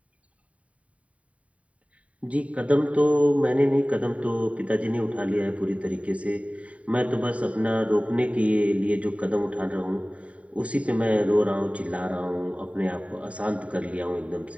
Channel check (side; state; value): left; late; 0.066 ms